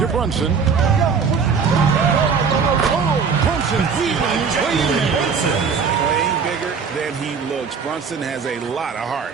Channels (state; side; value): quieter; left; 5.8 dB